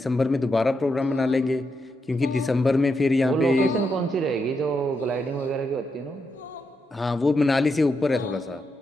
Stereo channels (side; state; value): both; normal; correlation 0.83